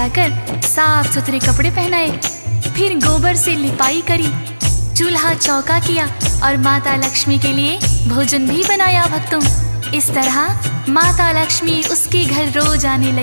साफ सुथरे कपड़े पहनाए। फिर गोबर से लिपाई करी, चूल्हा चौका किया और माता लक्ष्मी के लिए भोजन भी बनाया। भक्तों इस तरह माता लक्ष्मी उसके घर रोज आने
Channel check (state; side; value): inverted; both; correlation -1.00